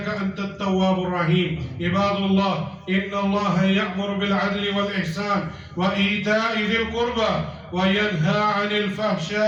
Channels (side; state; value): both; identical; correlation 1.00